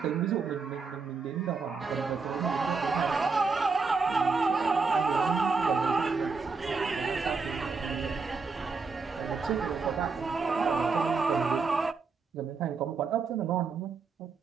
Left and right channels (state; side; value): quieter; left; 4.6 dB